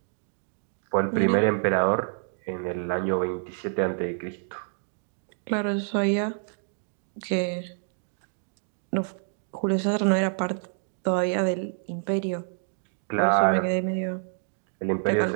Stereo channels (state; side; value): silent; left; digital silence